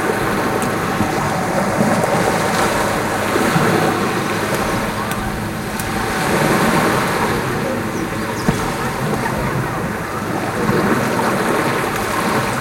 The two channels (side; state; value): both; identical; correlation 1.00